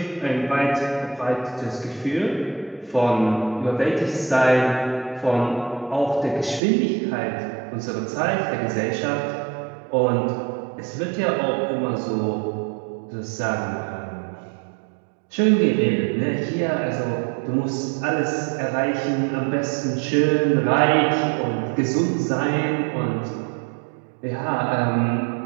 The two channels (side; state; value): left; drops out; at 6.6 s